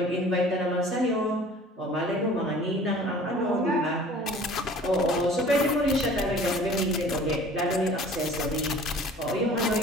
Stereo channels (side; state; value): both; normal; correlation 0.47